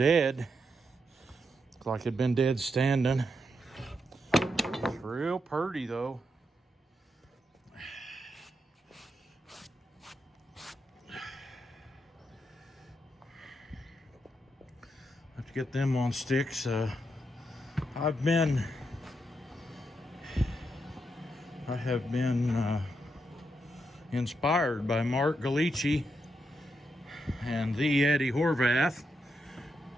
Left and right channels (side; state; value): both; normal; correlation 0.82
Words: Looked like it'd been dead standing. It's real pretty though. Have to get them on sticks. I have been inspired by Mark Galici and the Eddie Horvath.